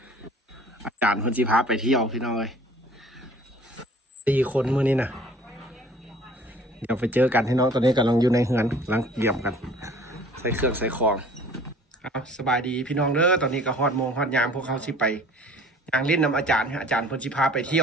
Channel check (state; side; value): normal; both; correlation 0.50